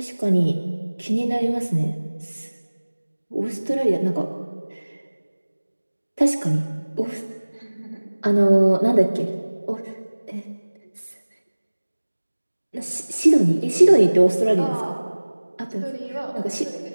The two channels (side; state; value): both; inverted; correlation -1.00